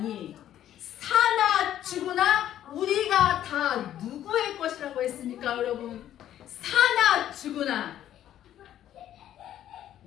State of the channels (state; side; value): quieter; right; 11.6 dB